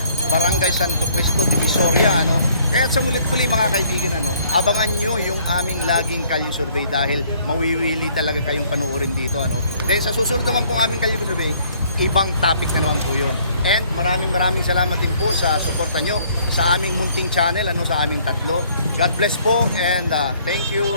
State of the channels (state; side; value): inverted; both; correlation -0.61